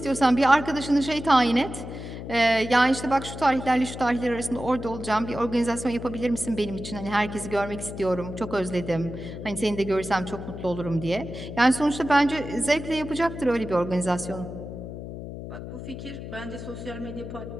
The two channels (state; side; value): noise; left; hum, 9 dB below the sound